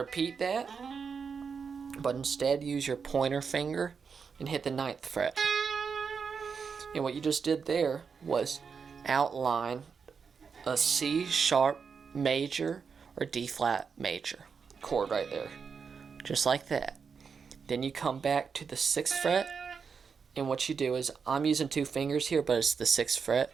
that, but instead use your pointer finger and hit the 9th fret. And what you just did there was outline a C sharp major or D flat major chord right there, just like that. Then you come back to the 6th fret, and what you do is, I'm using 2 fingers here, but it's the 6th fret.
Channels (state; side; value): quieter; left; 5.9 dB